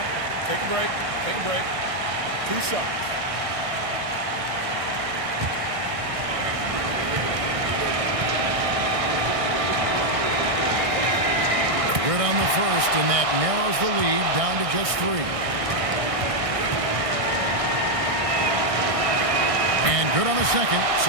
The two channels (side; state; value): left; late; 1.6 ms